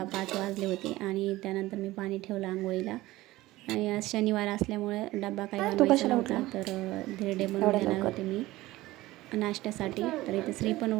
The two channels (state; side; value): quieter; left; 17.9 dB